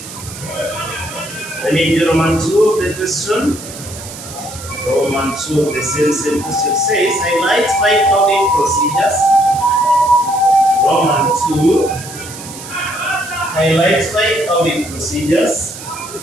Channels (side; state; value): right; noise; hiss, 13 dB below the sound